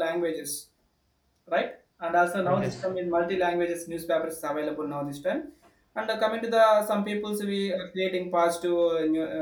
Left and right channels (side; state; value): both; identical; correlation 1.00